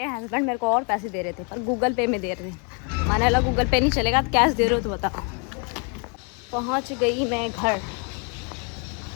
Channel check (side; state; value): right; quieter; 37.2 dB